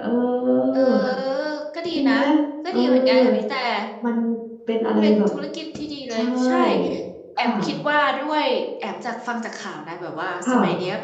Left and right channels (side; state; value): both; identical; correlation 1.00